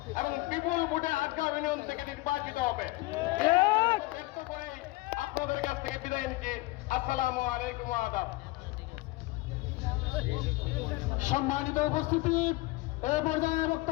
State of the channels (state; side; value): quieter; right; 21.2 dB